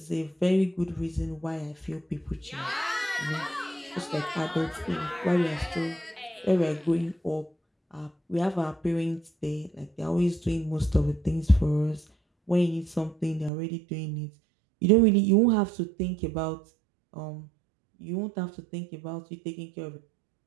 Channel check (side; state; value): left; drops out; at 13.5 s